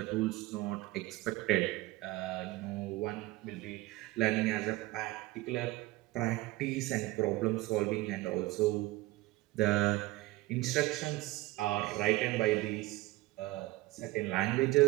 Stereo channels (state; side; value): quieter; left; 19.1 dB